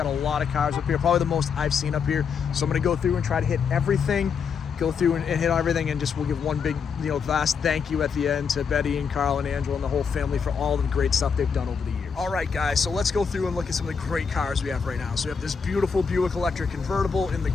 a lot of cars up here, probably the most I've seen up here. So I'm going to go through and try to hit everything, go through and hit everything, and just we'll give one big, you know, vast thank you at the end to Betty and Carl and Angela and the whole family for all the great stuff they've done over the years. All right, guys, so let's go through and look at some of the great cars we have right now. So we have this beautiful Buick Electric convertible in the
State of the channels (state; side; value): quieter; right; 6.1 dB